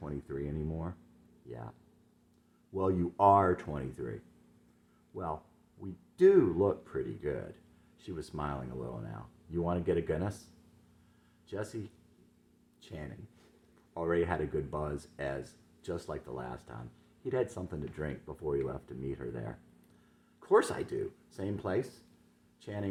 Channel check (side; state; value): both; identical; correlation 1.00